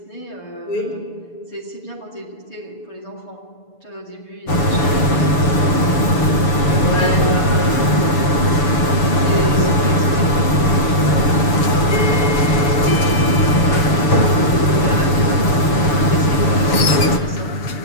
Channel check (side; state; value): right; late; 6.9 ms